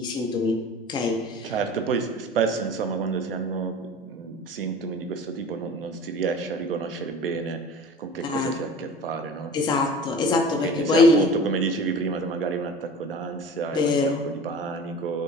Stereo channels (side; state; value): both; normal; correlation 0.40